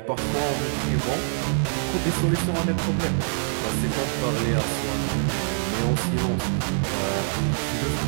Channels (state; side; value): silent; left; digital silence